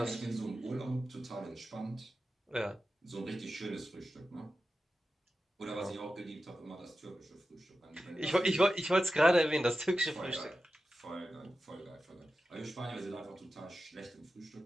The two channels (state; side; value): normal; both; correlation 0.92